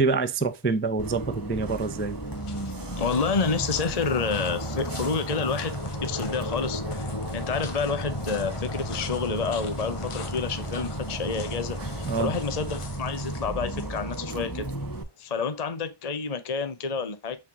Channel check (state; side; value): late; right; 1.1 ms